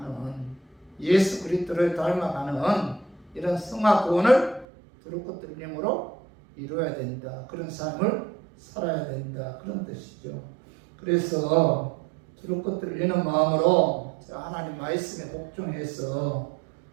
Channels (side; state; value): left; drops out; at 4.7 s